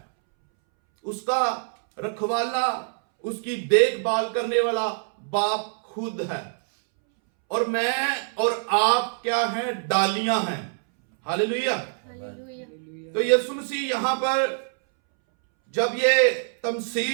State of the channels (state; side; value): silent; left; 62 dB below the other